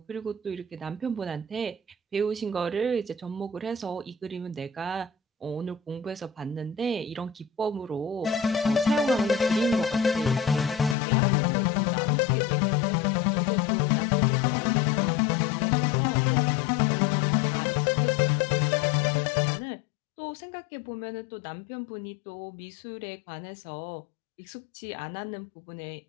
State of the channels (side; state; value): right; drops out; at 11.0 s